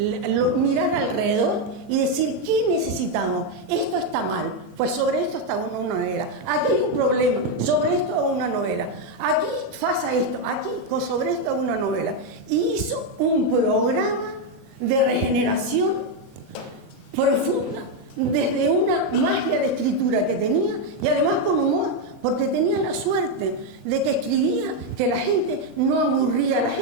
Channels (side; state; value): both; normal; correlation 0.03